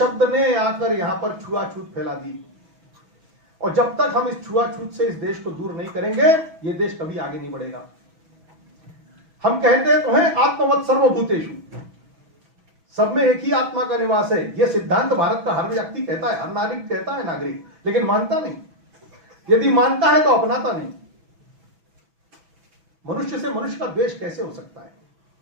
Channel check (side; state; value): left; late; 6.1 ms